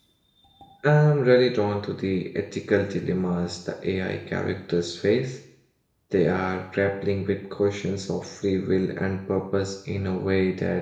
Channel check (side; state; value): both; identical; correlation 1.00